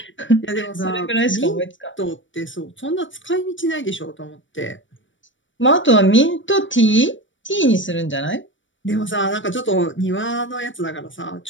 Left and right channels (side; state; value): right; late; 0.56 ms